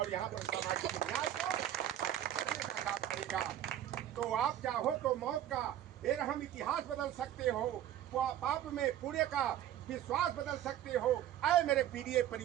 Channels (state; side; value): quieter; left; 11.8 dB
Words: यहाँ पर सामाजिक न्याय को करेगा। तो आप चाहो तो मौत का बेरहम इतिहास बदल सकते हो, पाप में पुण्य का विश्वास बदल सकते हो। ऐ मेरे पीडीए